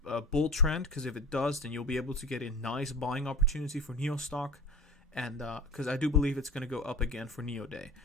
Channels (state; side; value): normal; both; correlation 0.36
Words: bull trend, because if it does, then you'll be able to get a nice buying opportunity for NIO stock, and because I do believe it's going to go up again for NIO Day.